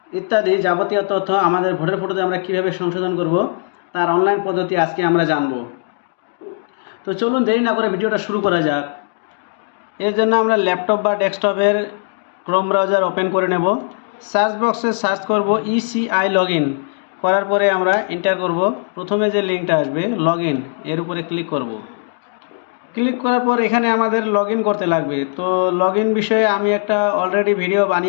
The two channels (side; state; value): right; silent; digital silence